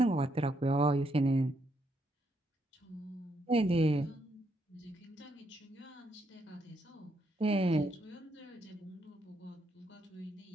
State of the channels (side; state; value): both; normal; correlation 0.76